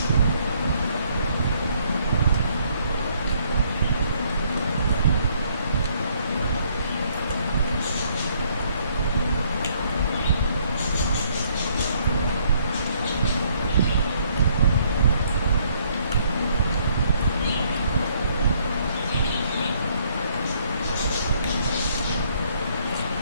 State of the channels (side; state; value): both; inverted; correlation -0.67